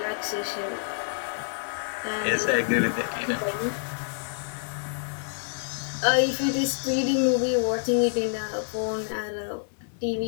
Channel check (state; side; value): silent; right; 60 dB below the other